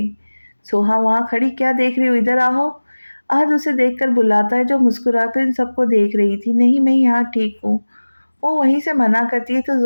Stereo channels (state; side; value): inverted; both; correlation -1.00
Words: सोहा वहाँ खड़ी क्या देख रही हो इधर आओ। अहद उसे देखकर बुलाता है जो मुस्कुराकर इन सबको देख रही थी। नहीं मैं यहाँ ठीक हूँ। वो वहीं से मना करती है तो